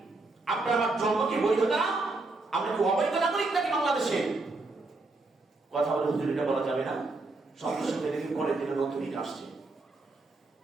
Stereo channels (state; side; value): quieter; left; 3.3 dB